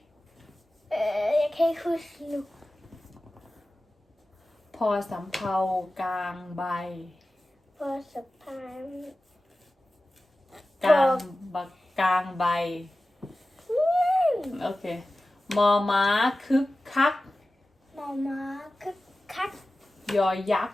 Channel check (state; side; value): normal; both; correlation 0.95